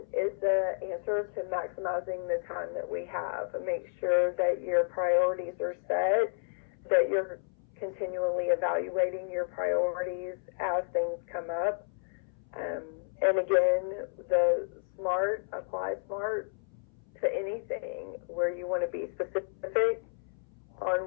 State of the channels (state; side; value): silent; right; 57 dB below the other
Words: is the answer to maximizing the time that we have. Make sure that your priorities are set, that you're continually evaluating your priorities as things come up. And again, the SMART, apply SMART to anything where you want to be specific on